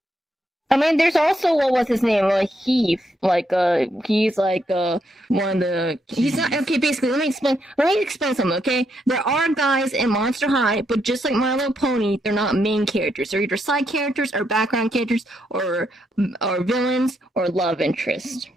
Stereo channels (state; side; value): normal; both; correlation 0.78